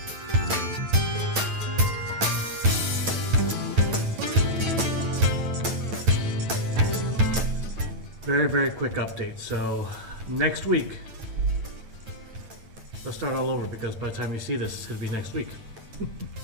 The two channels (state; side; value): late; left; 9.0 ms